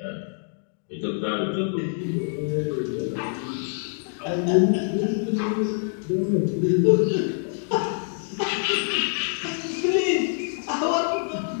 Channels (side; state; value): right; silent; 61 dB below the other